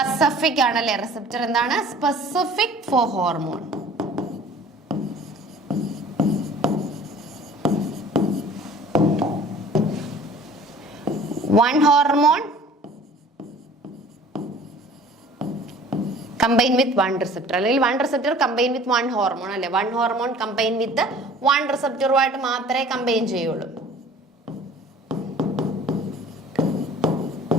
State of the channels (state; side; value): normal; both; correlation 0.48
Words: ആണല്ലേ. റിസപ്റ്റർ എന്താണ്, specific for hormone. One hormone combine with one receptor, അല്ലെങ്കിൽ one receptor combine with one hormone അല്ലെ. One hormone combine with one റിസപ്റ്ററുമായിട്ട് മാത്രമേ കമ്പൈൻ ചെയ്യുള്ളൂ.